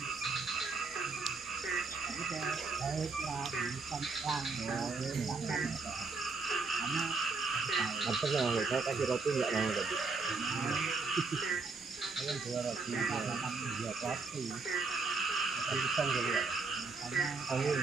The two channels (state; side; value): quieter; left; 4.3 dB